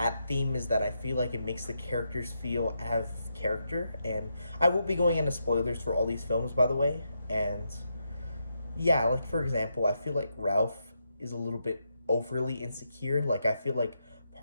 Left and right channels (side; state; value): both; inverted; correlation -0.83